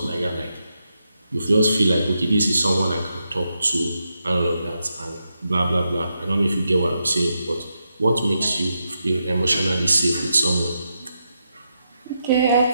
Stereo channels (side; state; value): both; inverted; correlation -0.84